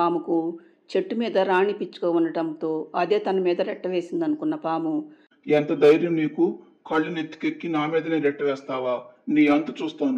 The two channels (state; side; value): identical; both; correlation 1.00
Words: చెట్టు మీద రాణి పిచ్చుక ఉండటంతో అదే తన మీద రెట్ట వేసింది అనుకున్న పాము, ఎంత ధైర్యం నీకు? కళ్ళు నెత్తికెక్కి నా మీదనే రెట్ట వేస్తావా? నీ అంతు